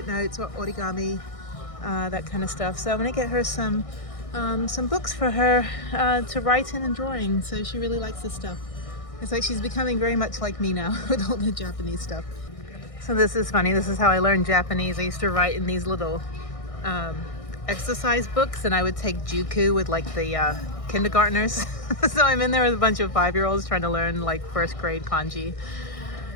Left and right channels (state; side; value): late; right; 1.6 ms